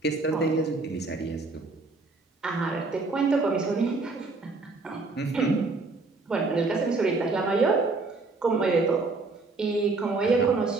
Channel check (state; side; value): quieter; left; 3.7 dB